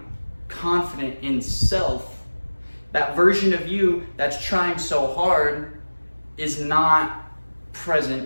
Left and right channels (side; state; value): both; inverted; correlation -1.00